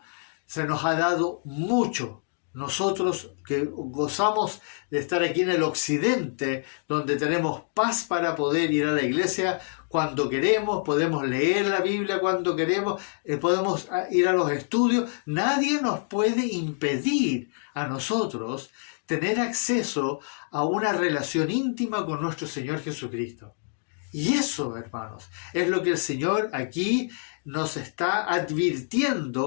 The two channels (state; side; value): silent; right; 61 dB below the other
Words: Se nos ha dado mucho. Nosotros que gozamos de estar aquí en el occidente, donde tenemos paz para poder ir a la iglesia cuando queremos, podemos leer la Biblia cuando queremos, podemos ir a los estudios. Nadie nos puede impedir a nosotros tener acceso a una relación íntima con nuestro Señor Jesucristo. Y eso, hermanos, es lo que el Señor aquí nos está